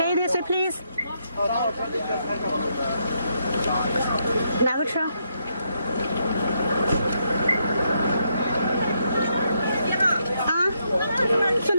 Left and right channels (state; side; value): inverted; both; correlation -0.78